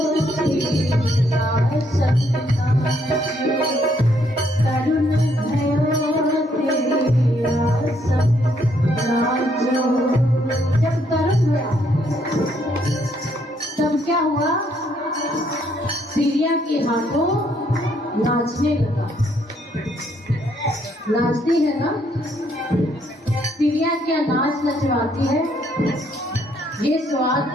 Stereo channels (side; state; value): both; normal; correlation 0.70